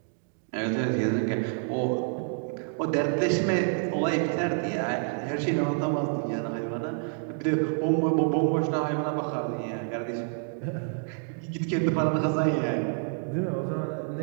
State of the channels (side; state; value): left; silent; 59 dB below the other